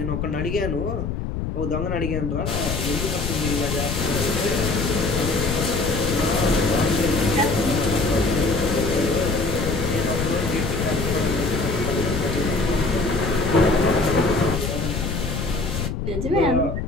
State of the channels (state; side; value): noise; left; rumble, 3 dB below the sound